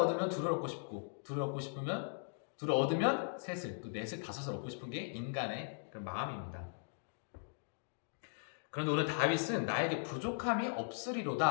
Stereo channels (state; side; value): silent; right; digital silence